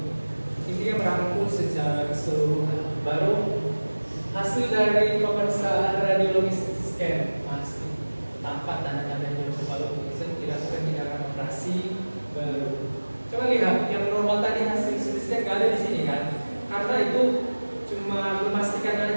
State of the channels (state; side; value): inverted; both; correlation -1.00